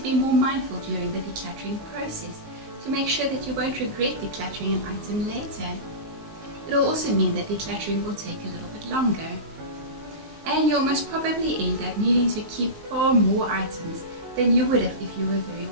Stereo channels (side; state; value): left; late; 19 ms